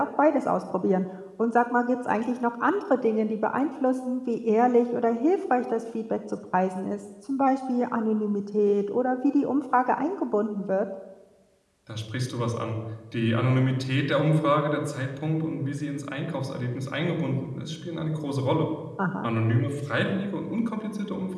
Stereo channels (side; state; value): both; identical; correlation 1.00